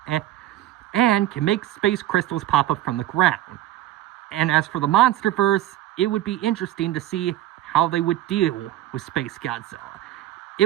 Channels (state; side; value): quieter; left; 13.6 dB